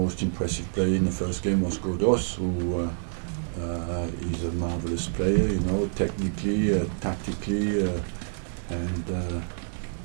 impressive player in the first game was Godos, who is a marvelous player, you know, technically, tactically, and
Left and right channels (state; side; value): silent; left; digital silence